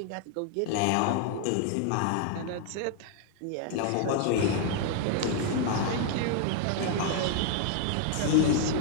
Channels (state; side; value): different; both; correlation 0.00